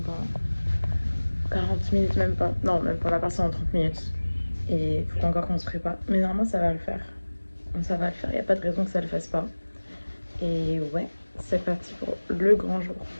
40 minutes, même pas. Non, même pas, on va partir dans 30 minutes. Et il faut encore qu'on se prépare. Mais normalement, ça va le faire. Ça va le faire, il n'y a pas de raison que ça le fasse pas. Et ouais, c'est parti pour le grand jour.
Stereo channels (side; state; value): both; inverted; correlation -1.00